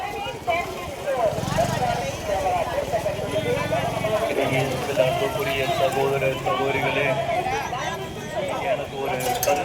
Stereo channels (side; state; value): both; identical; correlation 1.00